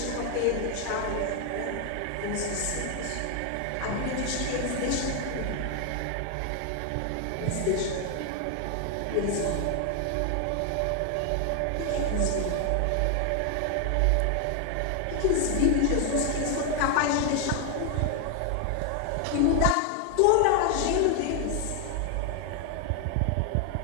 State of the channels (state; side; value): different; both; correlation 0.00